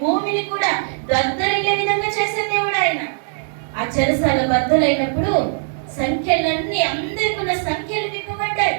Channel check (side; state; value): left; silent; 66 dB below the other